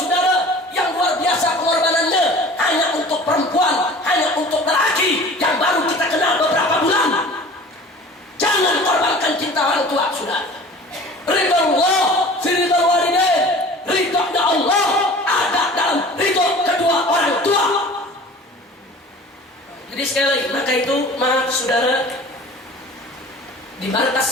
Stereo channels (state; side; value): normal; both; correlation 0.43